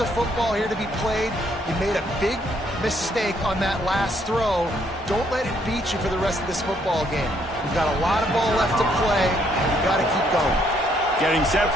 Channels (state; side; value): normal; both; correlation 0.70